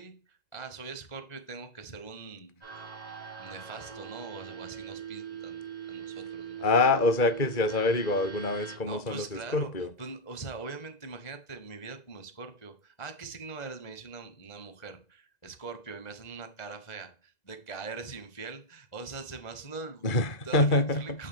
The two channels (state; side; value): late; right; 2.0 ms